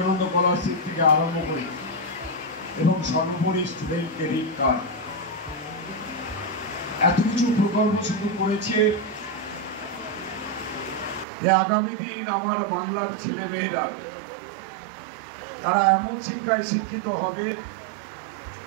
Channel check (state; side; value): drops out; left; at 11.2 s